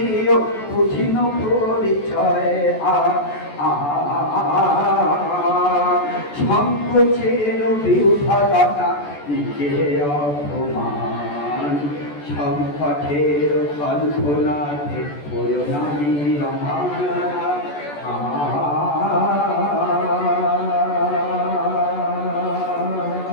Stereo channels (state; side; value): late; right; 14 ms